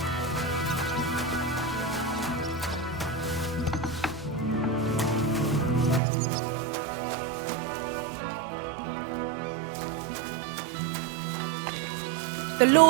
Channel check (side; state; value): left; drops out; at 6.0 s